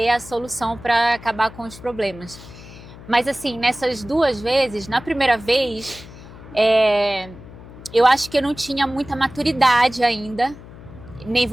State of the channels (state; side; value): noise; left; hum, 17 dB below the sound